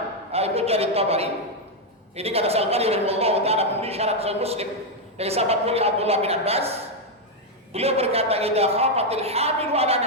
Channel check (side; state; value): both; normal; correlation 0.01